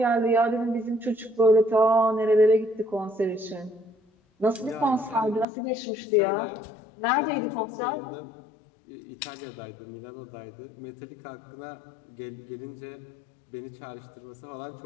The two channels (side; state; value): right; drops out; at 5.5 s